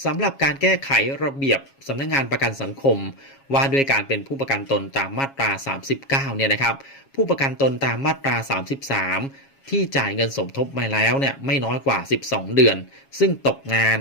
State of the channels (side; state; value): right; late; 7.3 ms